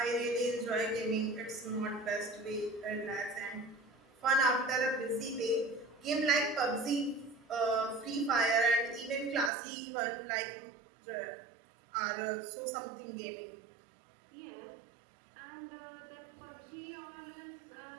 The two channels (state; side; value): drops out; left; at 9.5 s